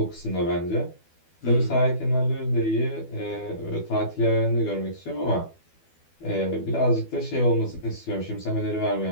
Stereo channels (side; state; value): right; late; 12 ms